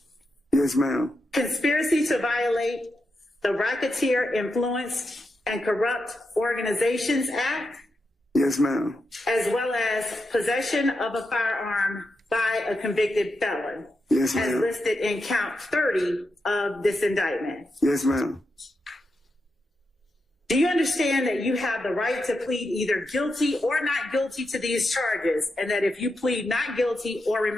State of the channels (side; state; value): both; normal; correlation 0.86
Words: Yes, ma'am. Conspiracy to violate the Racketeer Influenced and Corrupt Organizations Act, Yes, ma'am. as well as possession of a firearm by a convicted felon, Yes, as ma'am. listed in count 30 of this indictment. Yes, ma'am. Do you understand that you have the right to plead either guilty or not guilty to these charges, and that if you plead not guilty or